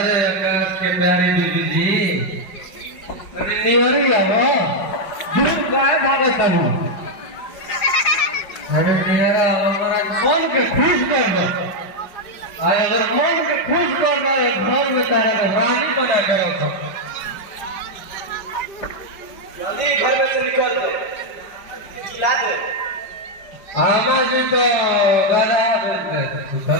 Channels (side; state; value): right; late; 5.1 ms